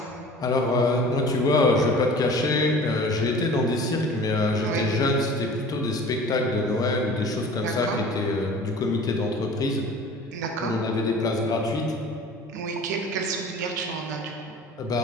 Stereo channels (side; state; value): both; normal; correlation 0.43